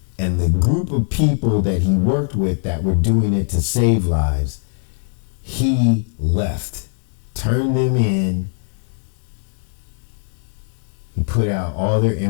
And the group of people that he worked with that were doing it to save lives, he left, turned them in. He put out all their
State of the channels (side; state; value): right; silent; 59 dB below the other